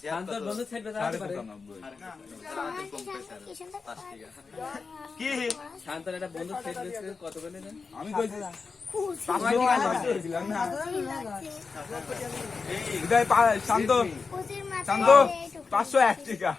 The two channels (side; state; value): right; quieter; 4.8 dB